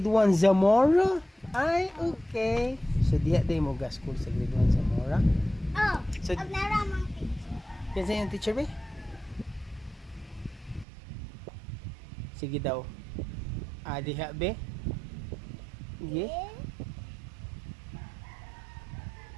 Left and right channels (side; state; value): left; drops out; at 10.9 s